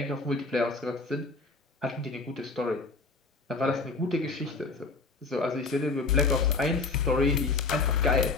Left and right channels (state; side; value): quieter; right; 3.9 dB